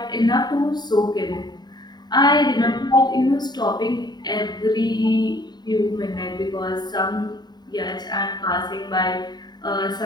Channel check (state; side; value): late; right; 0.20 ms